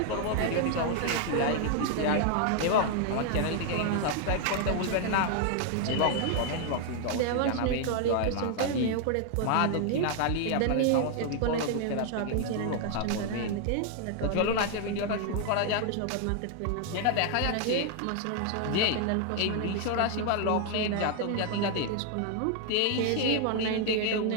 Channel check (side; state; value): both; different; correlation 0.00